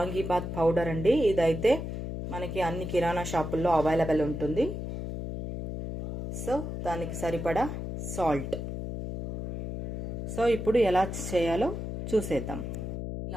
పౌడర్ అండి. ఇదైతే మనకి అన్ని కిరాణా షాపుల్లో అవైలబుల్ ఉంటుంది. సో దానికి సరిపడా సాల్ట్. సో ఇప్పుడు ఎలా చేయాలో చూసేద్దాం.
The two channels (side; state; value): left; noise; hum, 5 dB below the sound